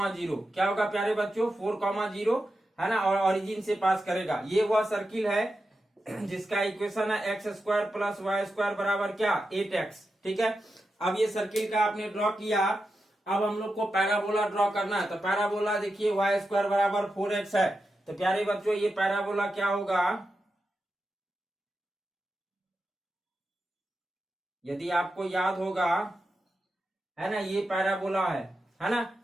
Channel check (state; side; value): normal; both; correlation 0.89